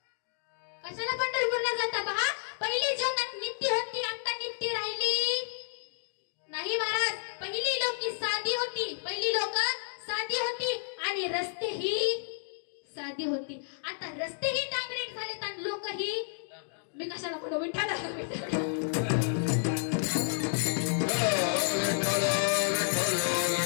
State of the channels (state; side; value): silent; right; digital silence